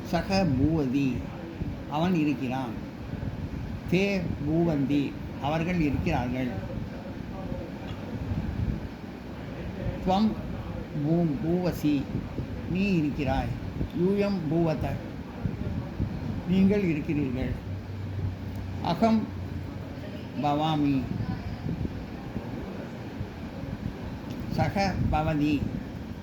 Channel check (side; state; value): both; identical; correlation 1.00